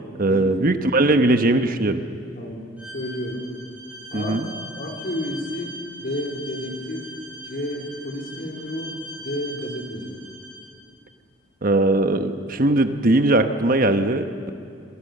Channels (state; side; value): normal; both; correlation 0.46